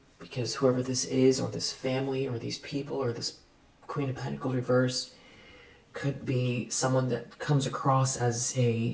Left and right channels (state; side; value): identical; both; correlation 1.00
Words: because whoever this is, or this family, or these people, or this Queen of Pentacles reverse, could be someone that comes across as